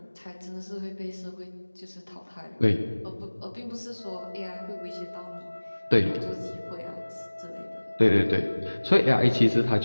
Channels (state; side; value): inverted; both; correlation -1.00